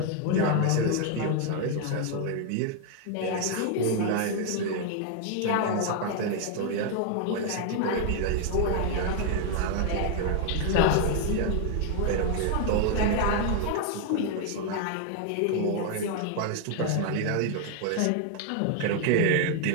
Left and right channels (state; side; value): different; both; correlation 0.00